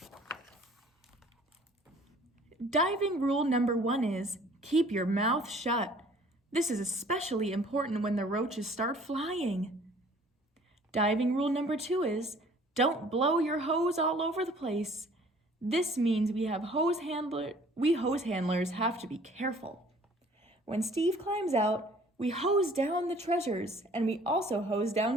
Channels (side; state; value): both; normal; correlation 0.54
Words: Diving rule number 1 is keep your mouth shut. This is especially important when the roaches start flying. Diving rule number 2 is don't blow your hose all over the place. This means we hose handlers have to be careful. When Steve climbs out, we hose down the treasures, and we also hose